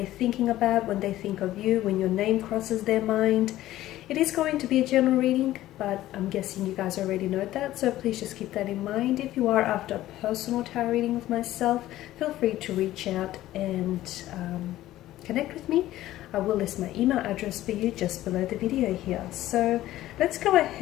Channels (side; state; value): right; quieter; 14.8 dB